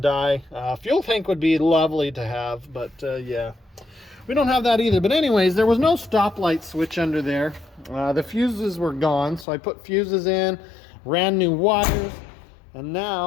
die. Fuel tank would be lovely to have, but yeah, we don't have that either. But anyways, there was no stoplight switch under there. The fuses were gone, so I put fuses in, ran new wires, and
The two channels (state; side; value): drops out; right; at 9.5 s